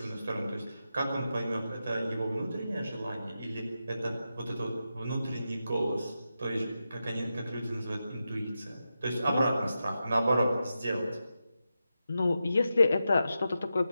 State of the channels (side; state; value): both; inverted; correlation -0.89